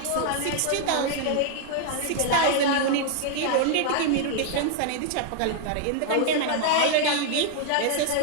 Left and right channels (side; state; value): both; different; correlation 0.00